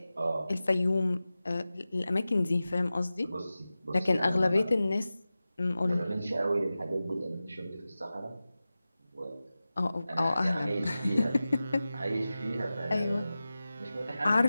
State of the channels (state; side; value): inverted; both; correlation -0.95